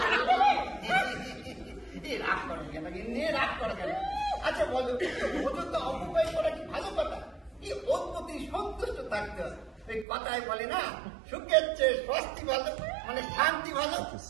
রাগ করো কেন গিন্নি, রাগ করো কেন? আচ্ছা বলো, ওজন তো অপব্যয় করা কি ভালো কথা? ওর প্রতি সন্তুষ্ট থাকতে হয়। ওই কথায় বলে না, সুখের চেয়ে স্বস্তি ভালো, মানে শান্তি ভালো। Thank you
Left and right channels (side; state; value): left; drops out; at 10.1 s